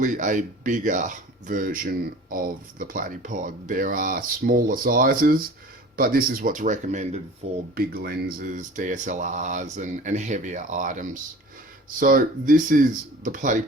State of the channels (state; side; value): normal; both; correlation 0.42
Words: a bigger version of the Platypod. There are smaller sizes, but this is what's recommended for big lenses, DSLRs and heavier items. So this is the